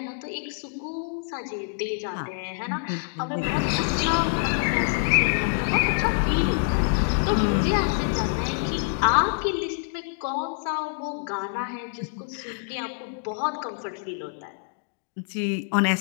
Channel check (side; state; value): right; silent; digital silence